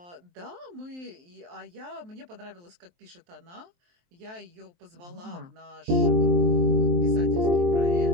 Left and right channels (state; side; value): late; left; 23 ms